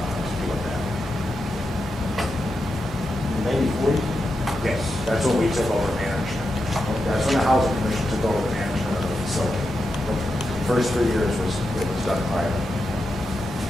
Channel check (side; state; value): both; normal; correlation 0.87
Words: do it that way. 90/40? Yes, that's when we took over management. That's when the Housing Commission took over the management of the facility. The first 3 years it was done private.